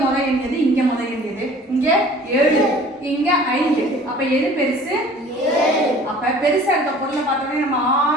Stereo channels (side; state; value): both; normal; correlation 0.48